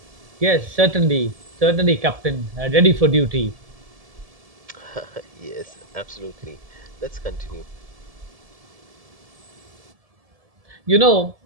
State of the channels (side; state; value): left; late; 1.7 ms